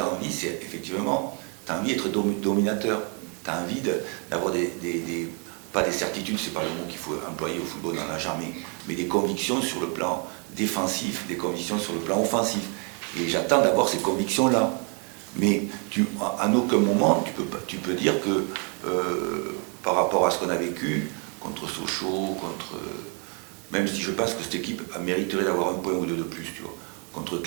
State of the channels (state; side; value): quieter; left; 37.3 dB